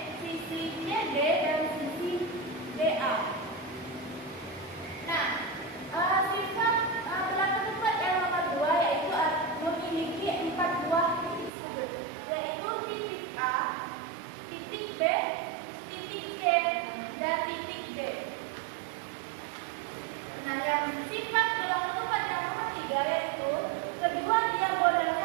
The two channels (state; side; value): drops out; left; at 11.5 s